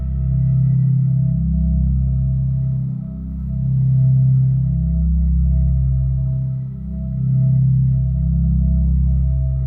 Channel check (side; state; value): both; identical; correlation 1.00